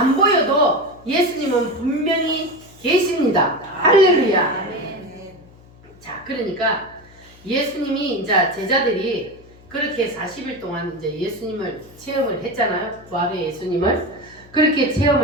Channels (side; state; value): left; noise; hum, 25 dB below the sound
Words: 보여도 예수님은 분명히 계십니다. 할렐루야. 자, 그러니까 예수님이 이제 제자들이 그렇게 40일 동안 이제 예수님을 체험을 했잖아요. 부활의 예수님을. 그렇게